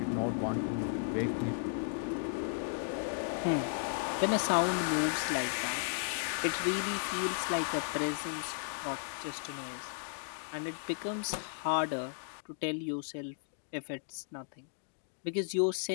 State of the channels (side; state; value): right; silent; digital silence